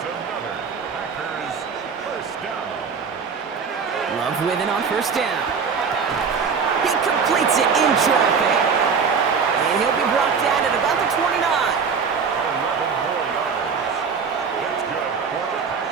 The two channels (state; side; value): quieter; left; 5.8 dB